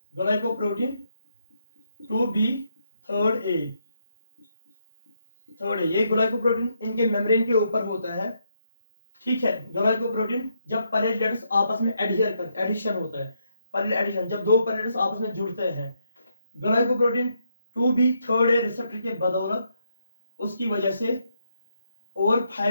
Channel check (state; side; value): inverted; both; correlation -0.78